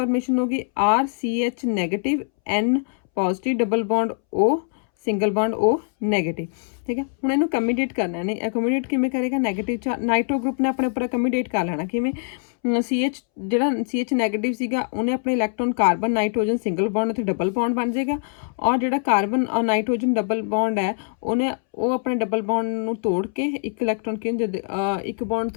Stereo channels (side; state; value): right; silent; 63 dB below the other